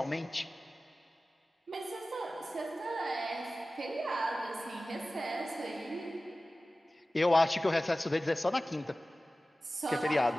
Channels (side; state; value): both; normal; correlation 0.96